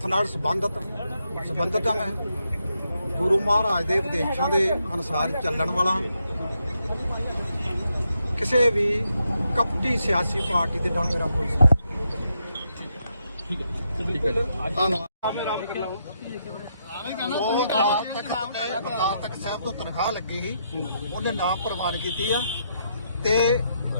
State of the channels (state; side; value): inverted; both; correlation -0.80